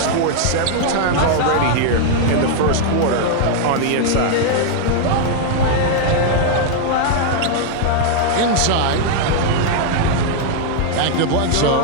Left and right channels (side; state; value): both; different; correlation 0.00